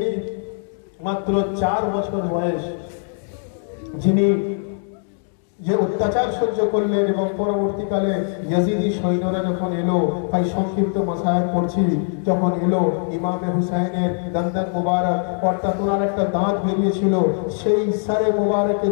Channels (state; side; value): silent; right; digital silence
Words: মাত্র 4 বছর বয়স, যিনি যে অত্যাচার সহ্য করলেন এবং পরবর্তীকালে ইয়াজিদি সৈন্যরা যখন এলো, তাই সংক্ষিপ্ত মাসায়েল পড়ছি, যখন এলো ইমামে হুসাইনের দন্দন মুবারক অর্থাৎ ওনার একটা দাঁত বেরিয়েছিল, সেই সারে মুবারকে